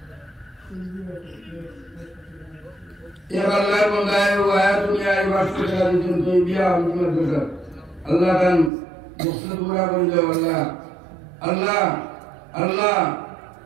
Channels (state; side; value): drops out; left; at 8.7 s